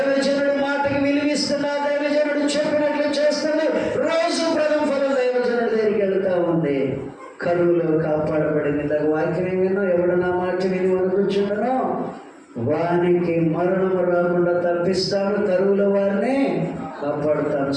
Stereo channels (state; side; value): identical; both; correlation 1.00